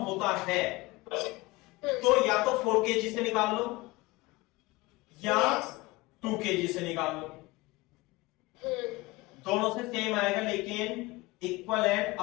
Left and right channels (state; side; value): quieter; right; 21.9 dB